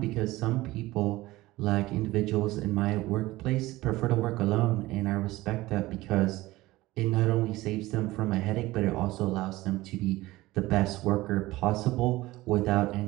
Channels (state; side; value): quieter; left; 18.4 dB